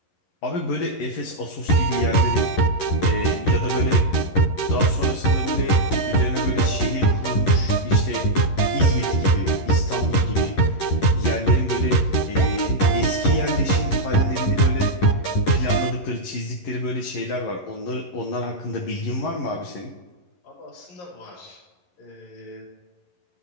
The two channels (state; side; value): late; right; 11 ms